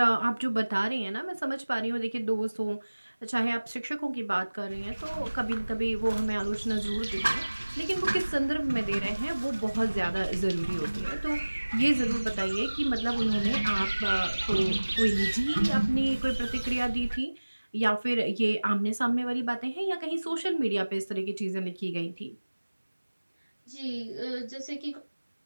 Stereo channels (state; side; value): inverted; both; correlation -1.00